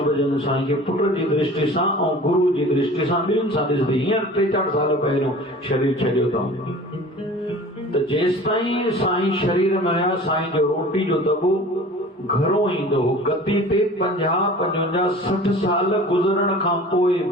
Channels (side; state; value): both; normal; correlation 0.42